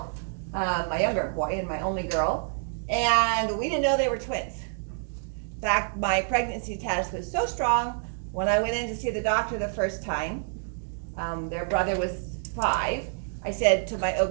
my younger boy and my only girl, and we didn't know they were twins. In fact, my pregnancy test was so strong, when I went in to see the doctor the first time, their brother was 5, I said to my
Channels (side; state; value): left; silent; digital silence